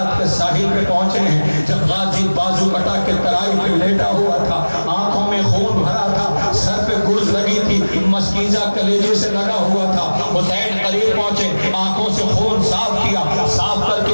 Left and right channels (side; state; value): both; inverted; correlation -1.00